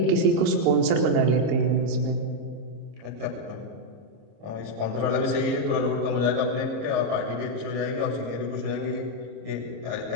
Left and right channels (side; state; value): left; late; 26 ms